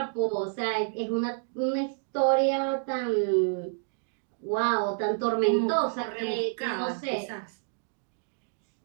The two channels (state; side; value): silent; left; digital silence